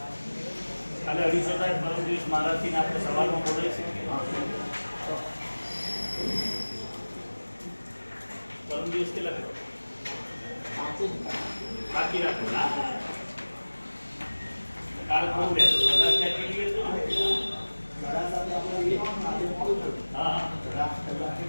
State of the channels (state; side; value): inverted; both; correlation -1.00